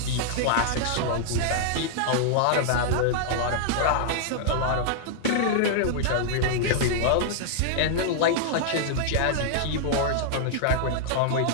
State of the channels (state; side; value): different; both; correlation -0.01